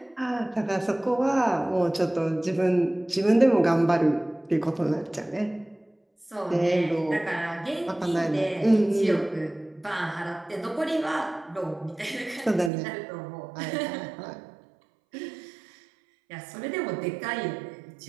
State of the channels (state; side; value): drops out; left; at 12.7 s